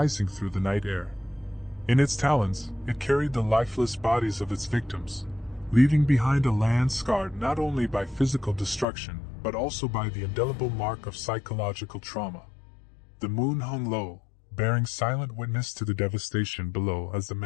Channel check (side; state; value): right; drops out; at 8.8 s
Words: through the night air. In its talons, it carried the lifeless bodies of its victims, leaving behind a land scarred not only by physical destruction, but also by the indelible mark of psychological trauma. The moon hung low, bearing silent witness to the devastation below as the